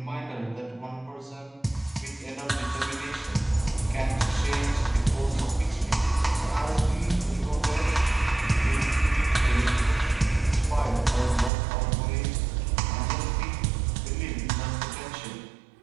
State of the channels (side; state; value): left; drops out; at 11.5 s